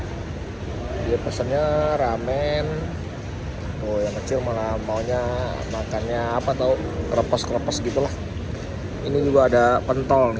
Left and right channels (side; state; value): both; identical; correlation 1.00